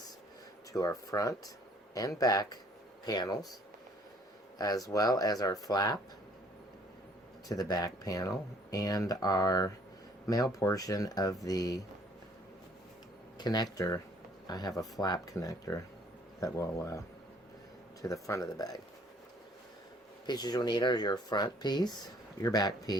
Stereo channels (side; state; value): both; normal; correlation 0.58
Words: to our front and back panels, as well as our flap to the back panel and our male portion of the connector. I have a flap connector that will to the front of the bag. Pieces you'll need are your front piece, your back